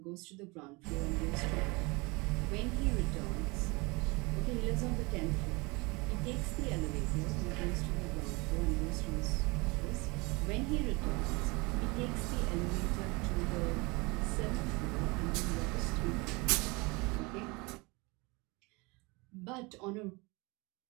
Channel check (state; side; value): quieter; left; 26.3 dB